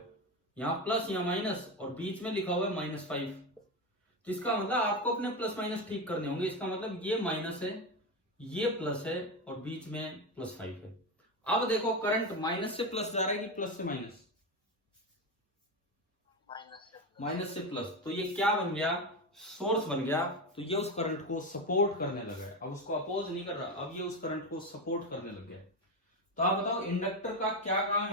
यहाँ प्लस यहाँ माइनस और बीच में लिखा हुआ है -5। तो इसका मतलब आपको अपने प्लस माइनस ठीक करने होंगे। इसका मतलब ये माइनस है, ये प्लस है और बीच में +5 है। अब देखो करंट माइनस से प्लस जा रहा है कि प्लस से माइनस? माइनस से प्लस। तो ये क्या बन गया? सोर्स बन गया। तो ये उस करंट को सपोर्ट करने लगा है, अब उसको अपोज नहीं कर रहा, अब ये उस करंट को सपोर्ट करने लग गया है। तो आप बताओ इंडक्टर का क्या काम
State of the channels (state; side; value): normal; both; correlation 0.15